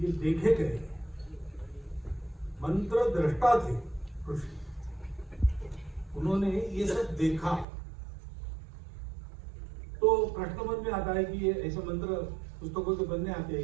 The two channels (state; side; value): drops out; left; at 7.7 s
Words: देखे गए। मंत्र दृष्टा थे ऋषि, उन्होंने ये सब देखा। तो प्रश्न मन में आता है कि ये ऐसे मंत्र पुस्तकों के बनने आते हैं